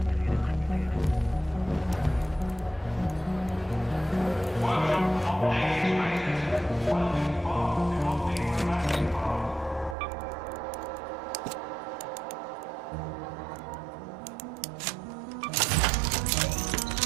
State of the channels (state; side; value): drops out; left; at 10.0 s